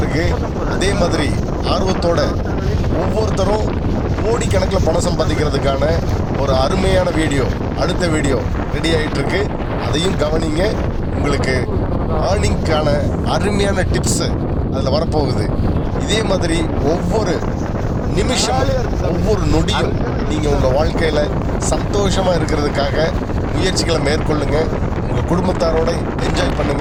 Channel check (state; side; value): identical; both; correlation 1.00